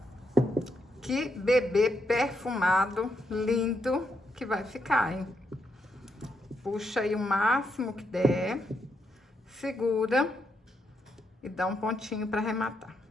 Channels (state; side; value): normal; both; correlation 0.80